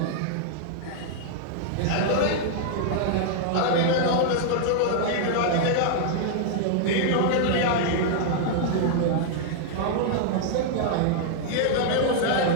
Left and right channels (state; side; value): different; both; correlation -0.01